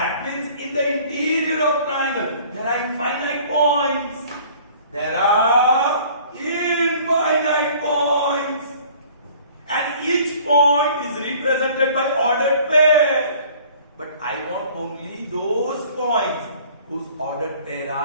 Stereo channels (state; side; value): inverted; both; correlation -0.51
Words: means in the interior of triangle, there are infinite points. There are infinite points. And each point is represented by ordered pair. But I want only those points whose ordered pair